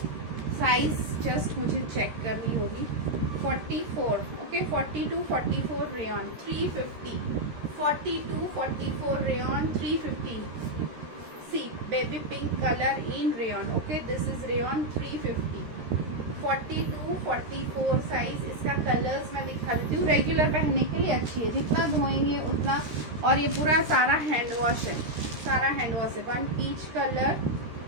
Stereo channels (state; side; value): late; left; 13 ms